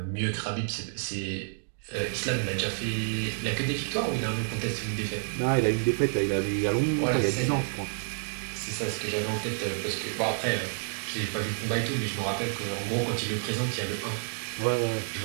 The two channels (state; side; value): silent; left; digital silence